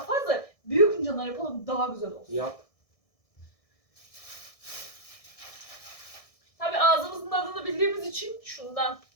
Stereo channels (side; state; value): right; late; 1.6 ms